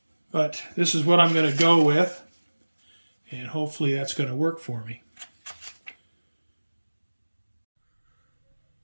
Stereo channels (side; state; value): both; inverted; correlation -1.00